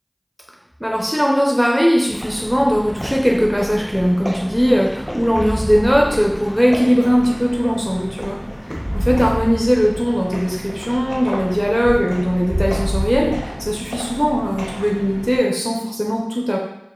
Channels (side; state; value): both; identical; correlation 1.00